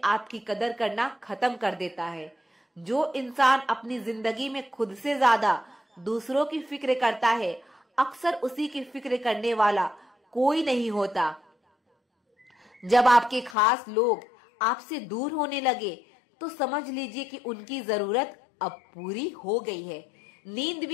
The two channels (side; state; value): right; drops out; at 13.6 s